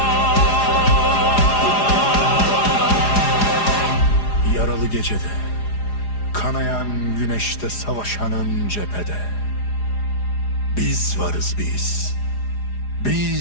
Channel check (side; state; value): right; late; 4.9 ms